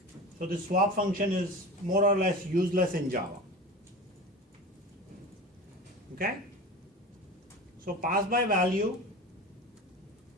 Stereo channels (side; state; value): both; normal; correlation 0.32